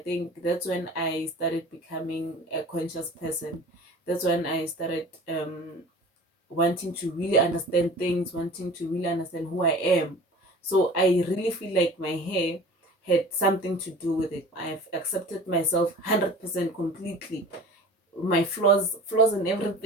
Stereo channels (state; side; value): normal; both; correlation 0.41